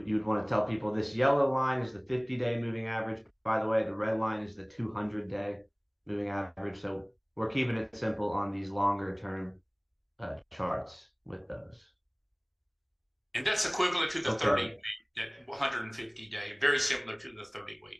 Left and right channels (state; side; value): identical; both; correlation 1.00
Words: want to tell people this yellow line is the 50-day moving average. By the way, the red line is the 200-day moving average. So we're keeping it simple on these longer term charts with those. And that's equivalent to the 30-week, that 150-day, very similar to the